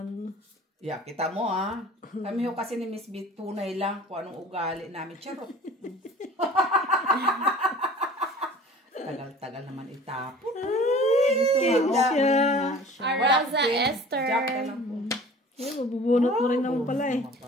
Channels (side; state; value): both; normal; correlation 0.45